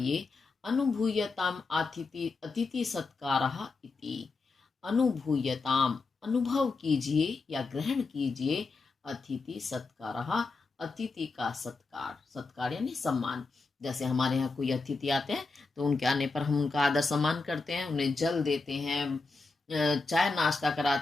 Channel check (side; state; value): right; quieter; 3.9 dB